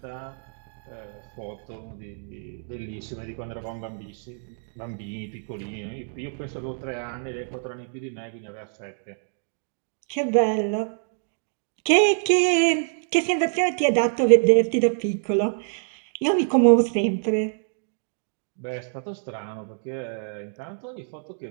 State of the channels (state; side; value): silent; left; digital silence